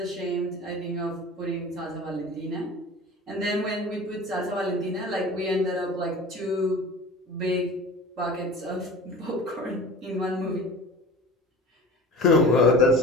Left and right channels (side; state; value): both; normal; correlation 0.38